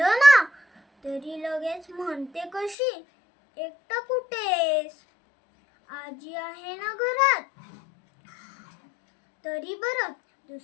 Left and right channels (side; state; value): right; drops out; at 2.8 s